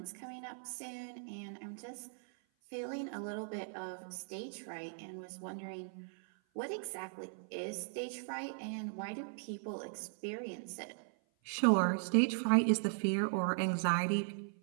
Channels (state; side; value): silent; left; 52 dB below the other